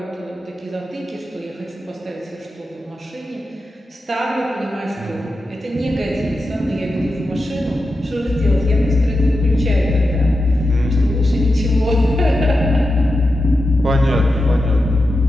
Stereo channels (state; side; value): normal; both; correlation 0.90